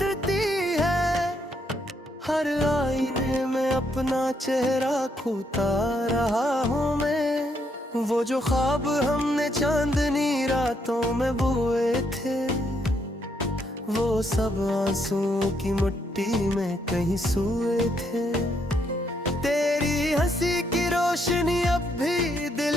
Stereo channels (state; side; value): normal; both; correlation 0.75